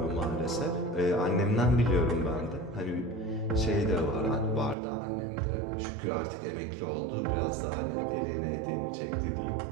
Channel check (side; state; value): left; drops out; at 4.8 s